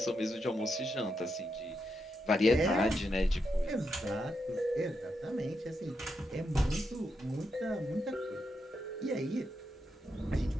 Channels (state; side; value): normal; both; correlation 0.83